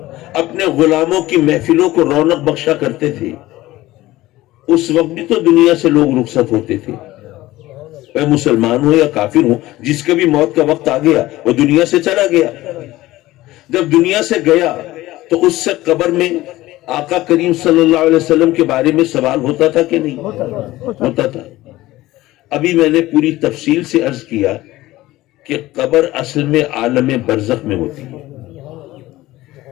اپنے غلاموں کی محفلوں کو رونق بخشا کرتے تھے، اس وقت بھی تو دنیا سے لوگ رخصت ہوتے تھے، چاہے مسلمان ہو یا کافر ہو، جس کا بھی موت کا وقت آ گیا وہ دنیا سے چلا گیا۔ جب دنیا سے گیا تو اس سے قبر میں آقا کریم صلی اللہ علیہ وسلم کے بارے میں سوال ہوتا تھا کہ نہیں؟ ہوتا تھا۔ ابھی میں نے پوری تفصیل سے عرض کیا کہ قبر اصل میں عالم برزخ میں ہوتی ہے۔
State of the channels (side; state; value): right; quieter; 17.2 dB